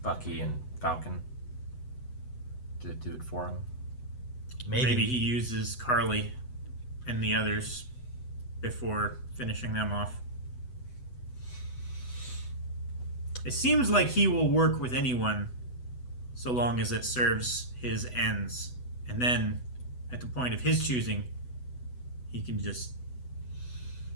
Bucky and Falcon to do it for him. Maybe he uses Carly and the others before finishing them off. It seems like he will work with anyone so long as it serves his ends. And then, at the point of his choosing, he can just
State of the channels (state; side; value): late; right; 8.0 ms